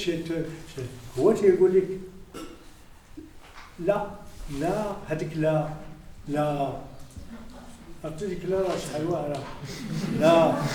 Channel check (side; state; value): both; identical; correlation 1.00